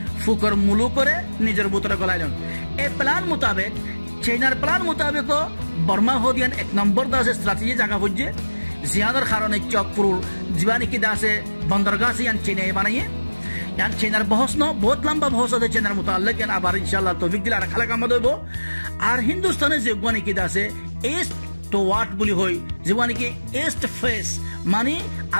ফুকর মুলু করে নিজের ভিতরে গলাইলেন এই প্ল্যান মোতাবেক চাইনার প্ল্যান মোতাবেক বর্মা হদিয়ান এক নম্বর দাসে স্ট্র্যাটেজি জায়গা বুঝছে জিয়ানোর কারণে চকপুর জীবানি কি দাসে বন্দরগাহ ইয়ান চেনাই বানাইয়ে ইয়ান চেনার বহস ন বহুত লম্বা বহস আছে চেনার মোতাল্লিক ইয়ান আবার ইনশাআল্লাহ তৌফিক দিলে আর খালা কাম দেব আর হিন্দুস্তানে যে জীবানি কি দাসে ইস্ট তো ওয়াট বলি হই জীবানি কি ইস্ট ফেস মানে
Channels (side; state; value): both; inverted; correlation -1.00